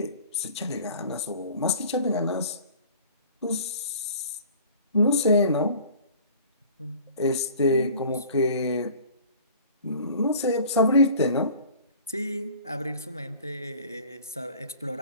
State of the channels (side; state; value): both; inverted; correlation -0.46